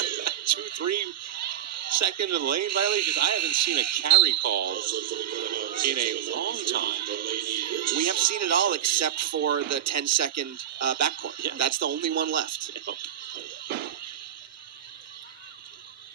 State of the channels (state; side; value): quieter; left; 10.7 dB